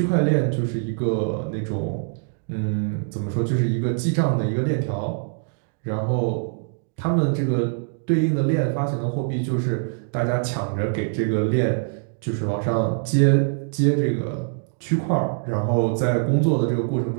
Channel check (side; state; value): left; silent; digital silence